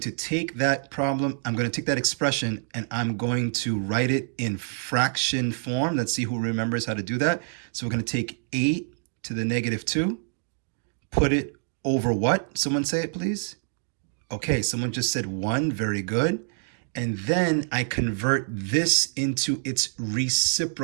to take that problem, I'm going to take that expression, and I'm going to write it in fraction form. Let's see who remembers how to do that. So we're going to take 8 to the negative 2, put it over what? Someone say it, please. Okay, someone just said 1. Very good. And then I convert this into its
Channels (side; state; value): left; silent; digital silence